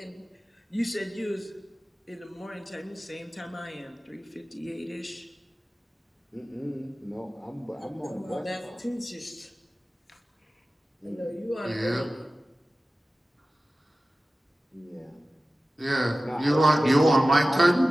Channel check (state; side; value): normal; both; correlation 0.96